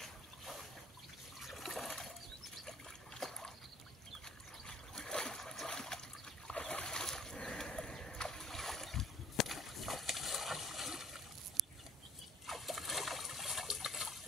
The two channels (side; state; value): both; normal; correlation 0.56